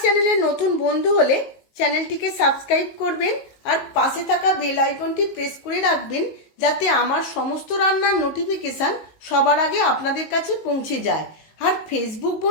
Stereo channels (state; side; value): late; right; 19 ms